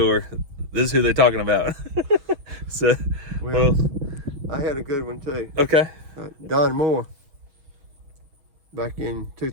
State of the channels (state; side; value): late; left; 6.7 ms